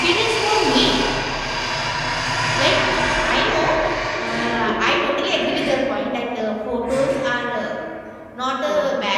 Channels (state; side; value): identical; both; correlation 1.00